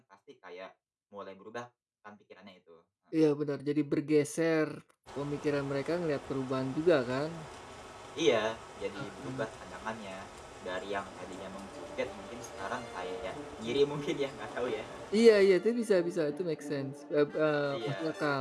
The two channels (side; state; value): both; identical; correlation 1.00